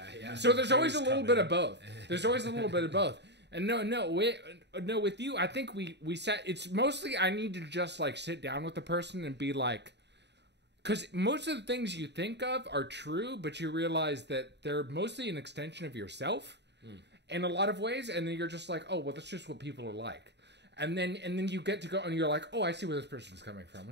So there's always a little come bit in. of both. There's always a little bit of both. And no, with you, I think we sat. It's mostly I need to just like sit down with the person and be like, because most of the things you think of are true, but you realize that they're mostly an extension of yourself in a lot of ways. And then you're just like, oh well, that's just what people are like. And then you get to go and you're like, oh, I see where this person's coming from.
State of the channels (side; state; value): left; late; 0.50 ms